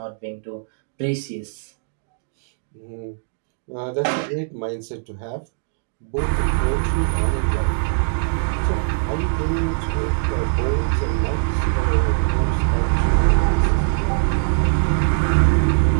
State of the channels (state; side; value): silent; left; digital silence